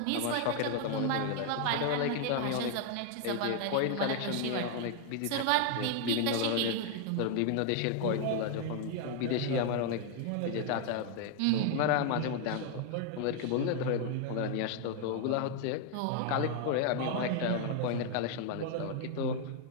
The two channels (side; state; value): both; different; correlation 0.00